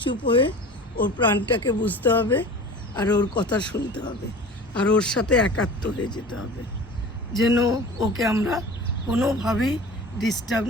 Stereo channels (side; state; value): both; normal; correlation 0.38